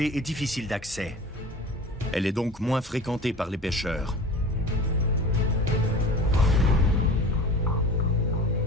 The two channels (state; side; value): normal; both; correlation 0.37